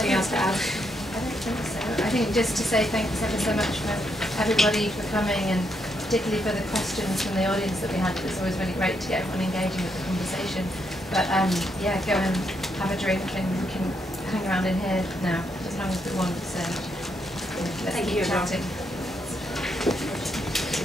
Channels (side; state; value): both; normal; correlation 0.78